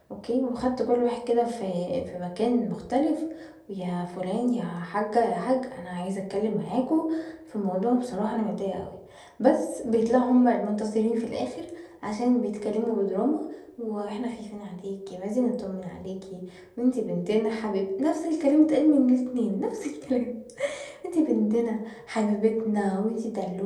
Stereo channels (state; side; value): identical; both; correlation 1.00